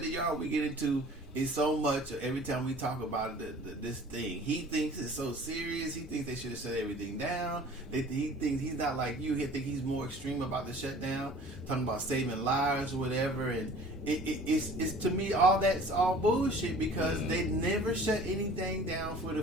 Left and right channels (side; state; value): both; normal; correlation 0.47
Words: the yard. We get into it so much every time we talk about this thing. He thinks it's so serious. He thinks they should have shut everything down. He thinks he's not like you. He think he's more extreme about the shutdown, talking about saving lives or whatever. And it's to me all that's all bullshit because they never shut anything down for